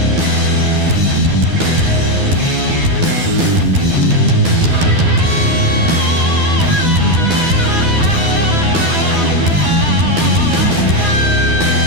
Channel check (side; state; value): left; late; 12 ms